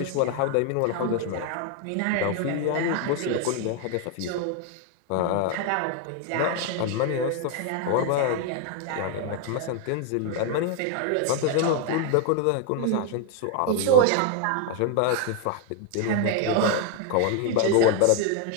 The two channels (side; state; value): both; different; correlation 0.01